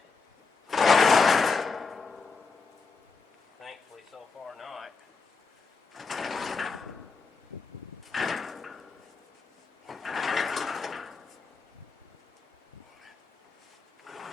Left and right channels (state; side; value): quieter; right; 4.7 dB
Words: Thankfully so far not.